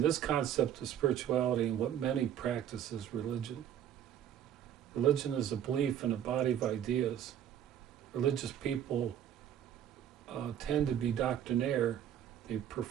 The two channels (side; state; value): left; quieter; 10.2 dB